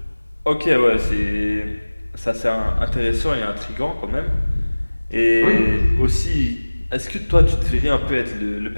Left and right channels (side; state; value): both; inverted; correlation -1.00